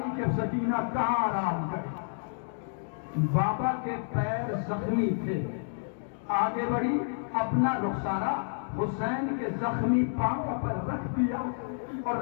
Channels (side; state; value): right; silent; digital silence